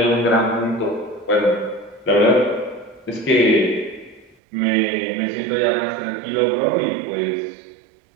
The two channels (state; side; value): drops out; left; at 4.4 s